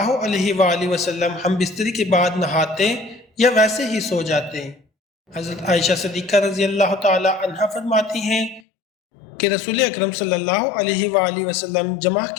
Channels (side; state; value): right; drops out; at 8.6 s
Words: علیہ وآلہ وسلم ہم بستری کے بعد نہاتے یا ویسے ہی سو جاتے؟ حضرت عائشہ صدیقہ رضی اللہ تعالی عنہا فرماتی ہیں کہ رسول اکرم صلی اللہ علیہ وآلہ وسلم جمعہ